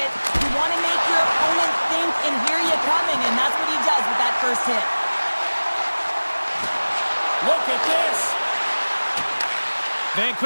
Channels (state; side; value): inverted; both; correlation -1.00